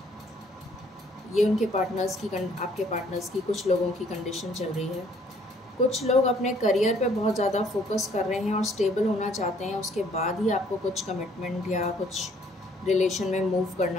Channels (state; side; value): normal; both; correlation 0.62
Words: ये उनके पार्टनर्स की आपके पार्टनर्स की कुछ लोगों की कंडीशन चल रही है। कुछ लोग अपने करियर पे बहुत ज़्यादा फोकस कर रहे हैं और स्टेबल होना चाहते हैं, उसके बाद ही आपको कुछ कमिटमेंट या कुछ रिलेशन में मूव